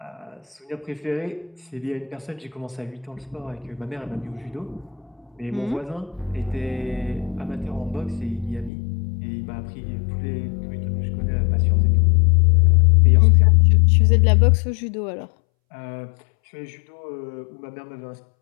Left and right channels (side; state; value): right; drops out; at 8.7 s